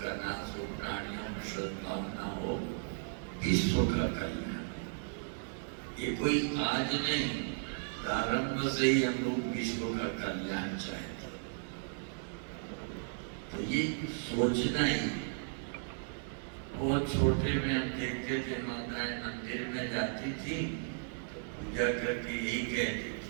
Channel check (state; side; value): silent; left; digital silence